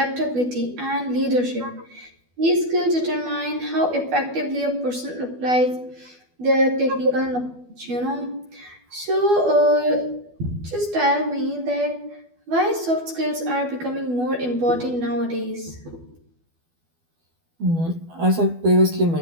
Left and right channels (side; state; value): left; late; 12 ms